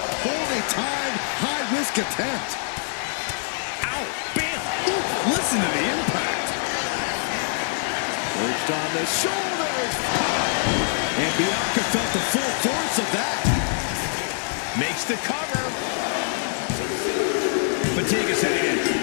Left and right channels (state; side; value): silent; right; 62 dB below the other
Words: poorly timed, high-risk attempt. Ow. Bam. Ooh, listen to the impact. Perched on the shoulders. Pow! And Bianca felt the full force of that. Makes the cover. Fatigue is setting in,